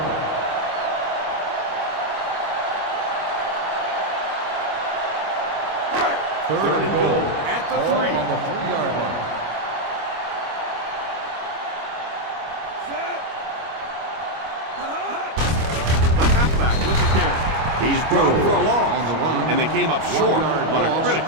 Third and goal at the 3. On the 3-yard line. The halfback with the carry. He's dropped for a loss, and they came up short on a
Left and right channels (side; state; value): left; late; 25 ms